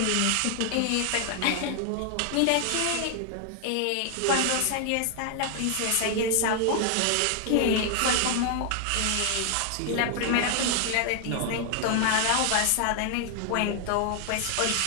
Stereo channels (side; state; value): both; different; correlation 0.00